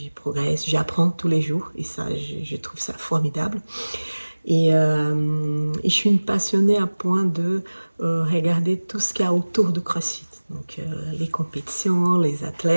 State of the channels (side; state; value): both; inverted; correlation -1.00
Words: progresse, j'apprends tous les jours et ça, je trouve ça formidable. Et je suis une passionnée à point de regarder tout ce qu'il y a autour de CrossFit. Donc, les compétitions, les